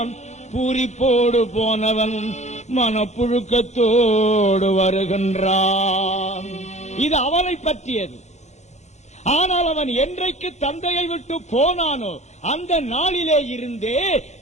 பூரிப்போடு போனவன் மனப்புழுக்கத்தோடு வருகின்றான். இது அவனை பற்றியது. ஆனால் அவன் என்றைக்கு தந்தையை விட்டு போனானோ அந்த நாளிலே இருந்தே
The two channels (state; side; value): late; right; 0.33 ms